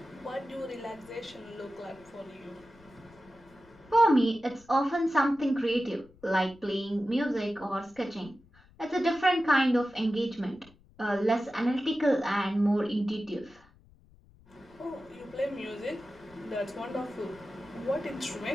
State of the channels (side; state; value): left; noise; rumble, 27 dB below the sound